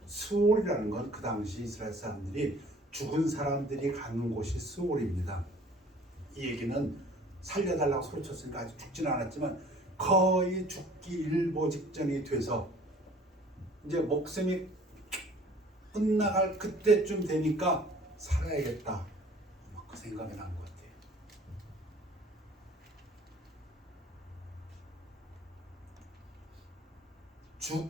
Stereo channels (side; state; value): both; normal; correlation 0.51